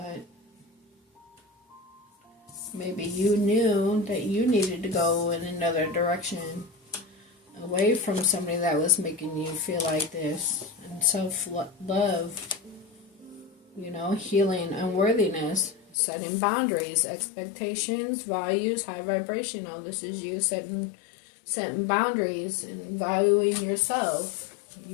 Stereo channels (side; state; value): right; drops out; at 16.0 s